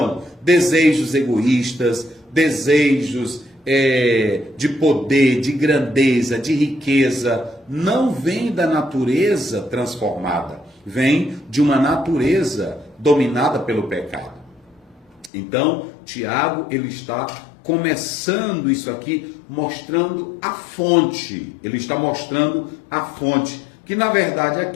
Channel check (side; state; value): right; drops out; at 15.3 s